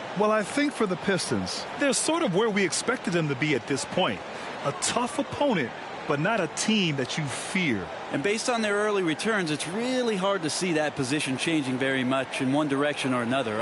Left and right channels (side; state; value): both; identical; correlation 1.00